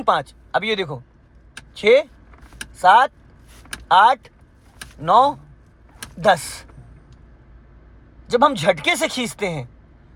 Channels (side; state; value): both; identical; correlation 1.00